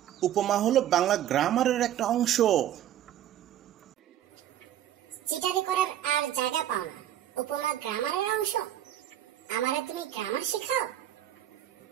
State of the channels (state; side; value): quieter; left; 11.6 dB